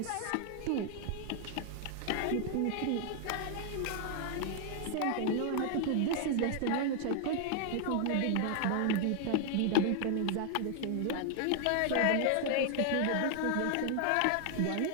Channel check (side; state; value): both; different; correlation 0.00